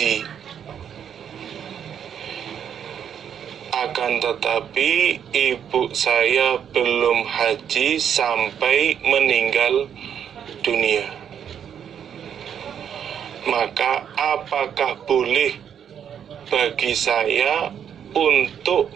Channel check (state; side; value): quieter; left; 8.6 dB